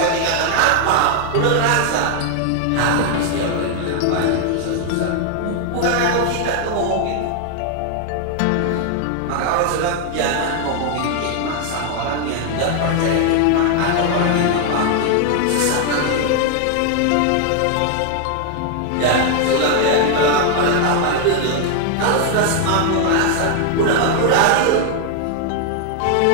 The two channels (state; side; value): different; both; correlation 0.00